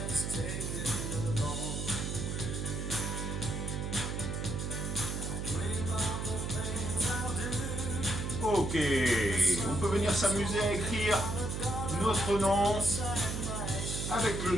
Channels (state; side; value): noise; right; hum, 3 dB below the sound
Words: Ok, on peut venir s'amuser à écrire notre nom avec le